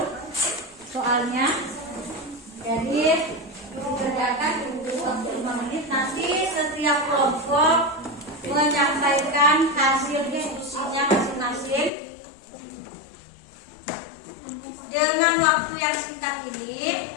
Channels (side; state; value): right; drops out; at 11.9 s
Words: soalnya. Jadi dikerjakan, ibu beri waktu 5 menit. Nanti setiap kelompok menyampaikan hasil diskusinya masing-masing. Dengan waktu yang singkat ini,